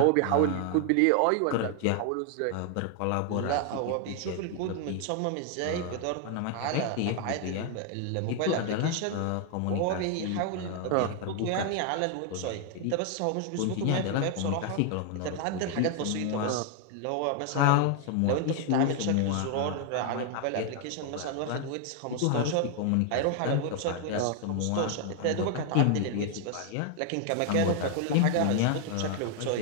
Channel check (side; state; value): both; different; correlation 0.00